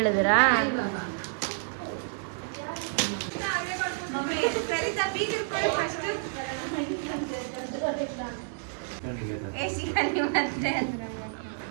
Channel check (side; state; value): left; silent; 58 dB below the other